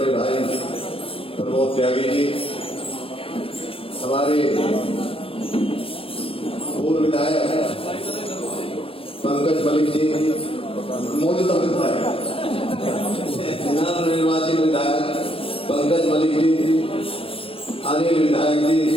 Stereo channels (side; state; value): right; late; 0.27 ms